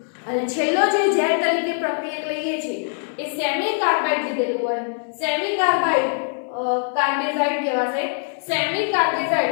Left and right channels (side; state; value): right; silent; digital silence